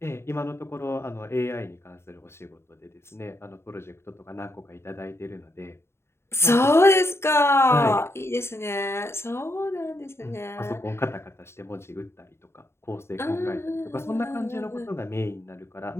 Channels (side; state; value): right; late; 0.12 ms